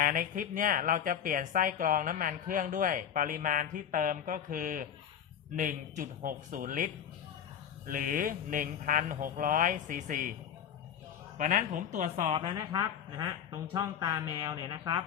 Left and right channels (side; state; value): right; quieter; 8.9 dB